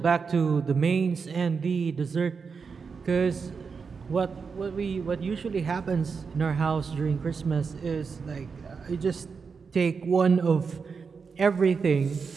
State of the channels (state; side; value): quieter; left; 5.4 dB